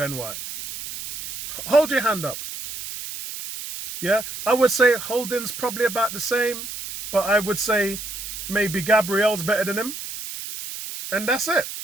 White? Hold your hand up. Yeah, I would say Holding's probably about the same, but I would say maybe Gabriel's better than him. And that's it.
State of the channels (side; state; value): right; noise; hiss, 9 dB below the sound